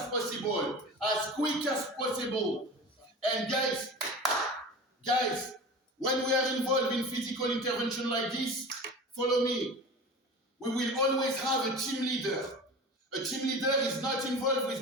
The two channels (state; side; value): normal; both; correlation 0.34